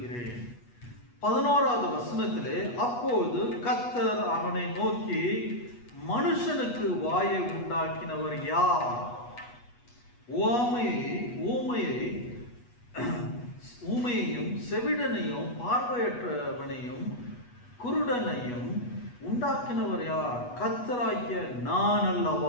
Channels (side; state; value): right; late; 8.3 ms